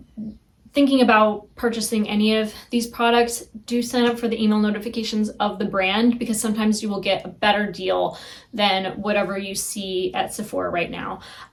thinking about purchasing any of these products, do sign up for the email notifications of the brand, because sometimes you will get a better deal than whatever you see at Sephora right now.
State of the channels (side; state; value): both; identical; correlation 1.00